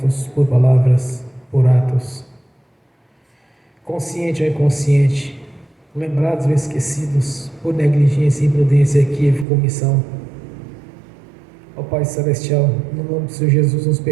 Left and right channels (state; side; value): drops out; left; at 9.5 s